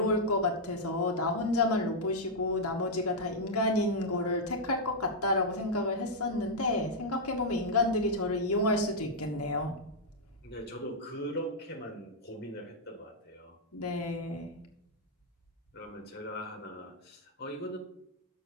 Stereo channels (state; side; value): normal; both; correlation -0.05